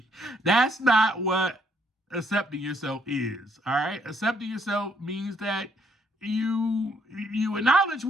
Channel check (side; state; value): both; normal; correlation 0.70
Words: That's not what accepting yourself is, all right? Accepting yourself means that you acknowledge